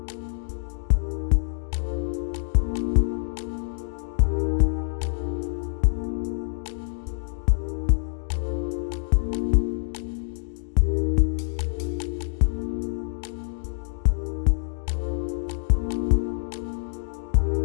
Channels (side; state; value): right; silent; digital silence